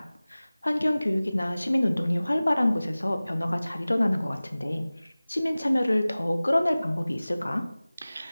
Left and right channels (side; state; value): both; inverted; correlation -0.98